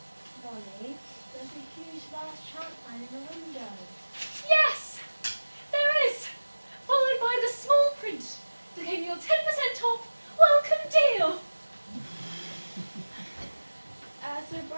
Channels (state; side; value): inverted; both; correlation -1.00